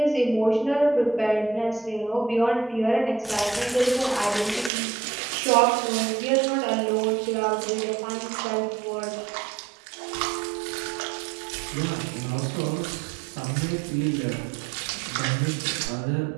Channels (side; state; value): left; drops out; at 4.7 s